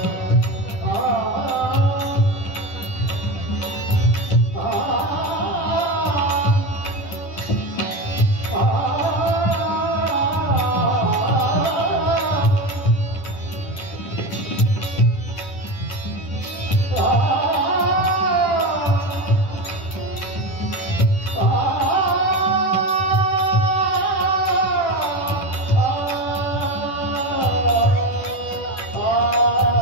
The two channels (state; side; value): late; right; 10 ms